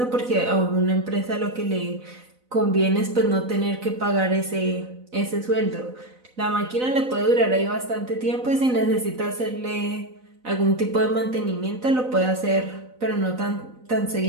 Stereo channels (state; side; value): late; left; 4.0 ms